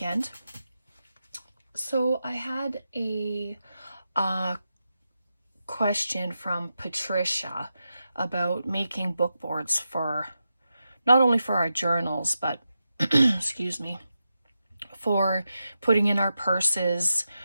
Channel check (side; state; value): both; inverted; correlation -0.89